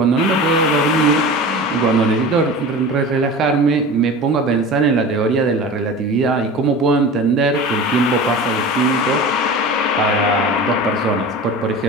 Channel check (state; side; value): normal; both; correlation 0.34